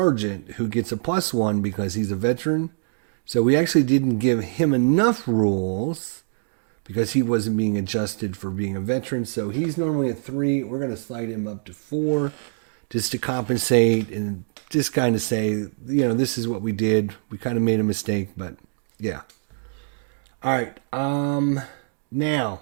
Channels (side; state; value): left; silent; digital silence